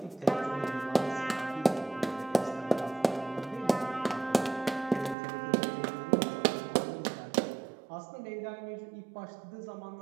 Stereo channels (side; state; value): left; drops out; at 5.2 s